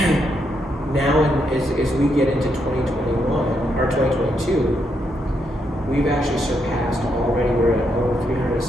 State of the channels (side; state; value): both; normal; correlation 0.79